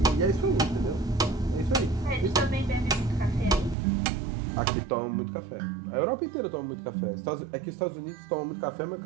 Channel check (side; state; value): left; drops out; at 3.8 s